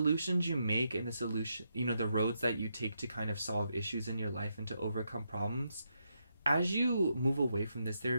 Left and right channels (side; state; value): both; inverted; correlation -0.81